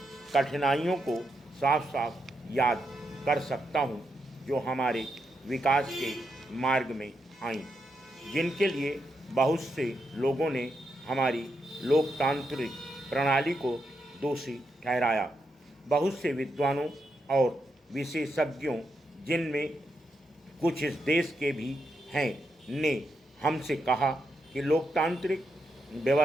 कठिनाइयों को साफ साफ याद कर सकता हूँ जो हमारे विकास के मार्ग में आईं, जिनके लिए बहुत से लोगों ने हमारी लोकतांत्रिक प्रणाली को दोषी ठहराया। बहुत से विद्वानों और विशेषज्ञों, जिनमें कुछ इस देश के भी हैं, ने हमसे कहा कि लोकतांत्रिक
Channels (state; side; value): normal; both; correlation 0.83